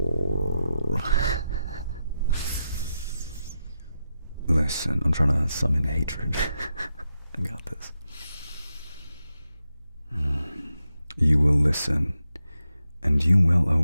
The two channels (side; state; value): both; inverted; correlation -0.87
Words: Listen, I'm trying to summon hatred. I got this. You will listen, and you will